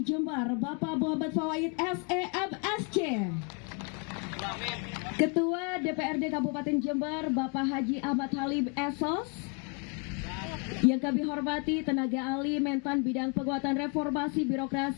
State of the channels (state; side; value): quieter; right; 36.8 dB